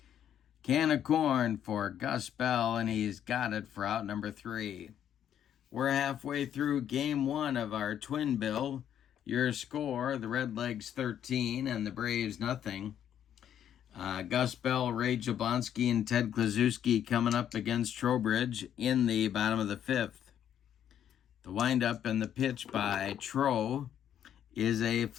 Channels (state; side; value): quieter; right; 9.9 dB